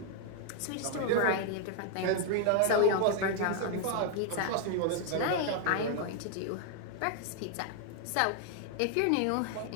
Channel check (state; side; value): different; both; correlation 0.00